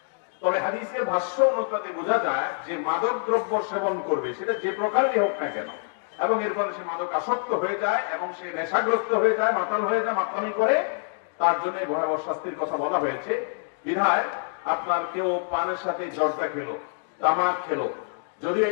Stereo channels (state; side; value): silent; right; digital silence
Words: তবে হাদিসের ভাষ্য অনুপাতে বোঝা যায় যে মাদক দ্রব্য সেবন করবে, সেটা যে প্রকারেরই হোক না কেন, এবং এর ফলে সে মাদক আসক্ত হয়ে যায় এবং সে নেশাগ্রস্ত হয়ে যায়, মাতাল হয়ে যায়, মাতামি করে, তার জন্য ভয়াবহ শাস্তির কথা বলা হয়েছে। বিধায় আপনার কেউ পানের সাথে জর্দা খেলো, তামাক খেলো, যদিও